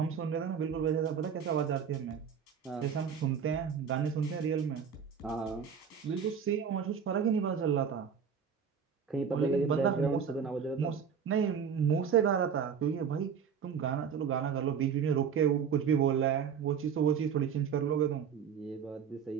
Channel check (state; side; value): quieter; left; 7.0 dB